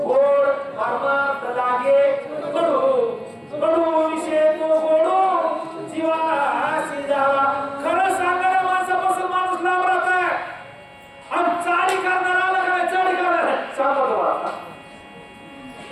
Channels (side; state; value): both; identical; correlation 1.00